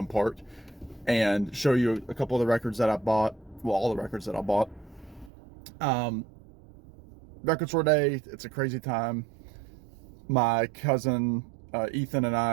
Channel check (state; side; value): drops out; left; at 5.3 s